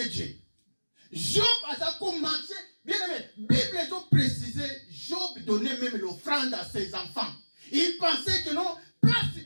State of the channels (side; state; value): both; inverted; correlation -1.00